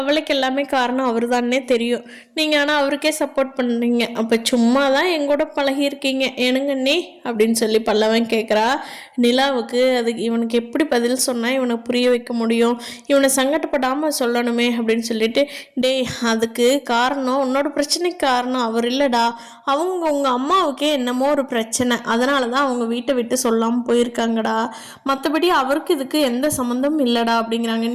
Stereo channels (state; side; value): identical; both; correlation 1.00